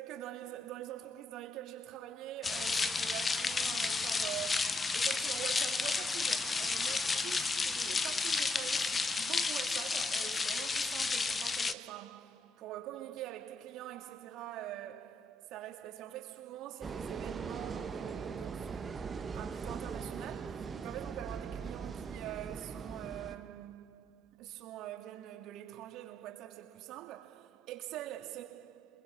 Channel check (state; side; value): normal; both; correlation 0.78